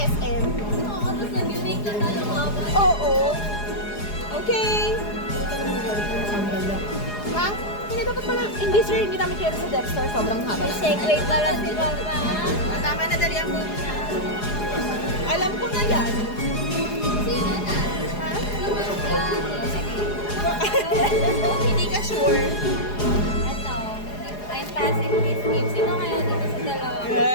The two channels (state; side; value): late; right; 4.8 ms